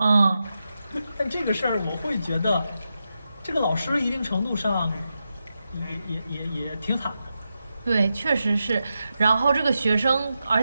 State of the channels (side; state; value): both; inverted; correlation -0.88